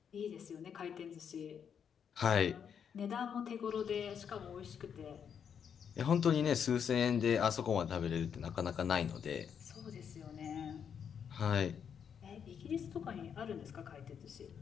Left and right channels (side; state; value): right; quieter; 7.6 dB